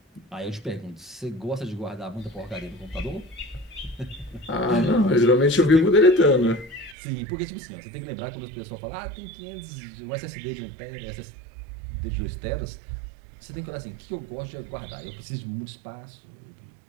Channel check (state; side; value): drops out; left; at 7.0 s